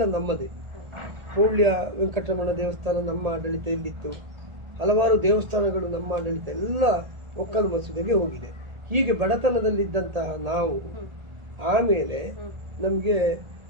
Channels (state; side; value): late; left; 1.8 ms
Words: ನಮ್ಮದೇ. ಪೂಳ್ಯ ವೆಂಕಟರಮಣ ದೇವಸ್ಥಾನ ನಮ್ಮ ಆಡಳಿತೆಯಲ್ಲಿತ್ತು, ಹಲವಾರು ದೇವಸ್ಥಾನಗಳು ನಮ್ಮ ಆಡಳಿತ ಎಲ್ಲ ಒಕ್ಕಲು ಮಸೂದೆಗೆ ಹೋಗಿದೆ. ಹೀಗೆ ಬಡತನದಲ್ಲಿದ್ದಂತಹ ನಾವು ಆಮೇಲೆ ನಮಗೆ